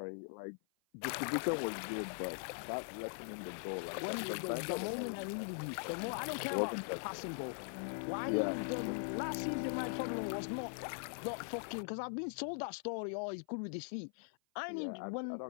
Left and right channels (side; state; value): right; silent; 50 dB below the other